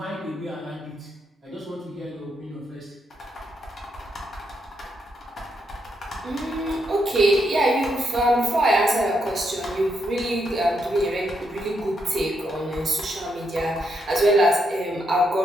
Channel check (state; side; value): normal; both; correlation 0.79